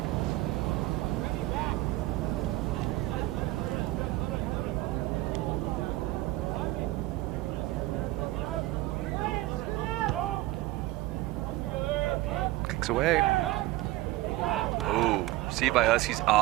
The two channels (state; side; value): quieter; left; 17.9 dB